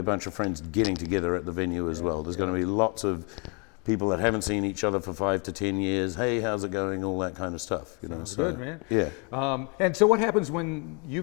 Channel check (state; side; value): quieter; right; 33.6 dB